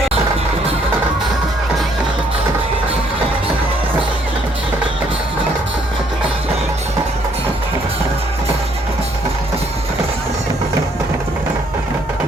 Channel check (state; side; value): normal; both; correlation 0.67